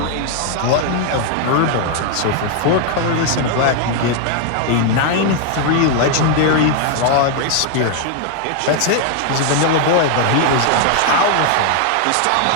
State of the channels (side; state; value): both; different; correlation 0.00